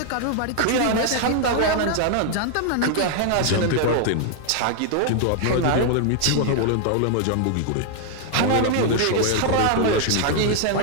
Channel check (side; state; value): both; different; correlation 0.00